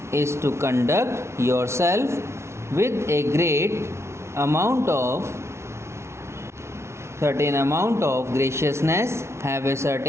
is to conduct yourself with a certain amount of graciousness, have a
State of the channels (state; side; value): late; left; 0.13 ms